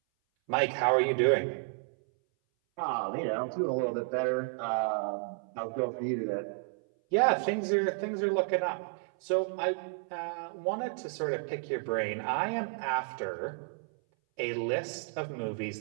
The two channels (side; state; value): left; silent; 57 dB below the other